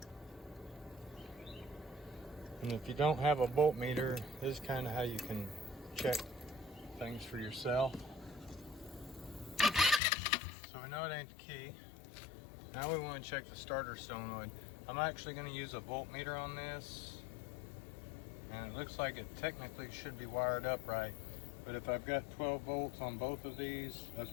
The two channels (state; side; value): drops out; right; at 10.0 s